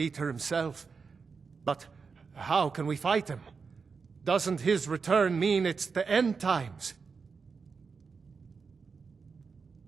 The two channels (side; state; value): left; quieter; 5.2 dB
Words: himself. But how can we fight him? Doesn't his return mean it's the end times?